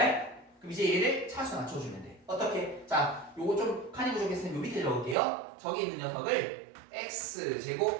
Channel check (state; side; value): drops out; left; at 5.2 s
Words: 그럼 이제 얘를 차수 맞춰주면 돼. 어떻게? 자, 요거 좀 칸이 부족했으면 요 밑에 적을게요. 저기 있는 녀석을